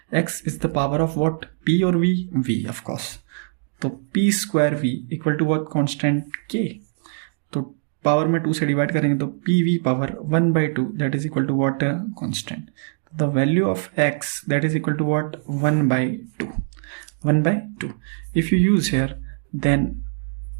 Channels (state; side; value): silent; left; digital silence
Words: x is the power of what P और V, V ऑफ कोर्स। तो P square V equal to what constant K। तो पावर में 2 से डिवाइड करेंगे तो PV power 1/2 that is equal to what constant. The value of x that is equal to what 1/2 1/2। If you use here then